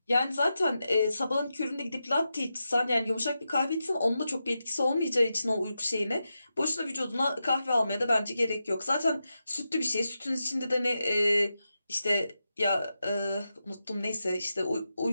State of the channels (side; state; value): both; inverted; correlation -0.89